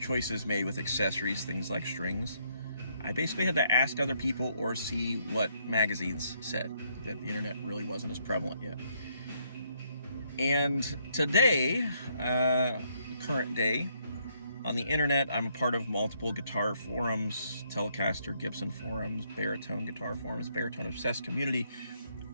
made with accessories, things like strings, I basically had to ask other people or see what magazines said. That the internet really wasn't as prevalent yet. And today, current day, on the internet, I'm a part of multiple guitar forums, Telecaster, Gibson forums, baritone guitar forums, baritone obsessed community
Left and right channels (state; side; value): inverted; both; correlation -0.72